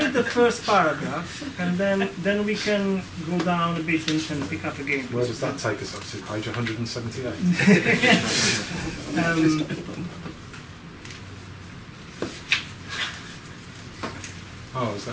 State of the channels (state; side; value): identical; both; correlation 1.00